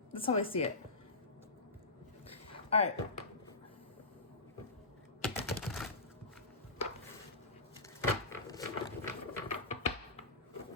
That's how I see it. All right.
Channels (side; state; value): right; quieter; 3.2 dB